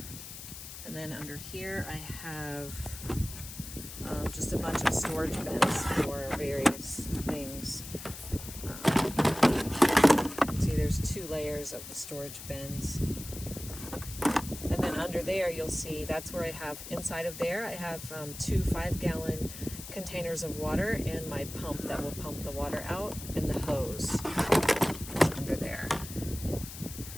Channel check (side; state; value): left; noise; hiss, 11 dB below the sound